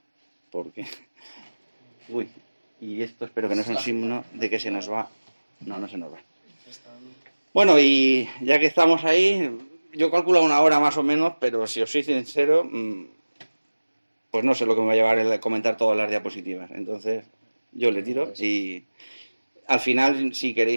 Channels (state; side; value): inverted; both; correlation -1.00